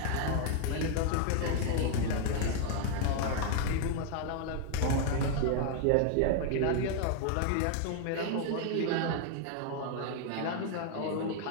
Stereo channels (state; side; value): different; both; correlation 0.00